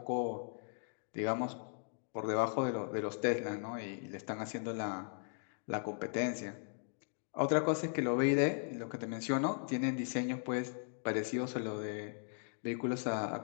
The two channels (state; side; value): silent; right; digital silence